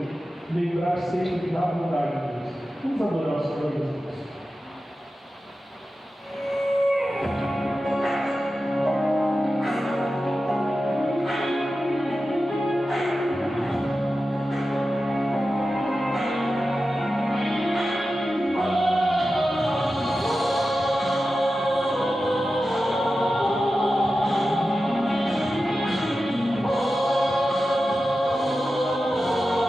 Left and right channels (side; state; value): both; normal; correlation 0.93